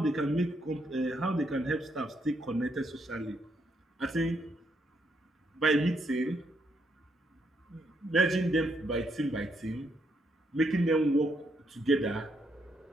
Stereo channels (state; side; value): normal; both; correlation 0.76